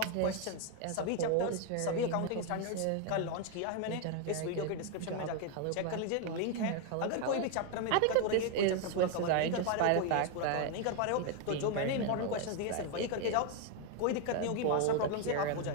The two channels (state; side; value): different; both; correlation 0.01